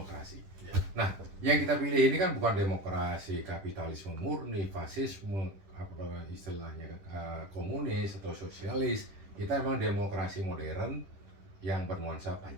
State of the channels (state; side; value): late; left; 10 ms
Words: Ya. Nah, yang kita pilih ini kan bukan demokrasi kapitalisme murni, fasisme, apa istilahnya komunis atau sosialis. Kita emang demokrasi modern yang bernuansa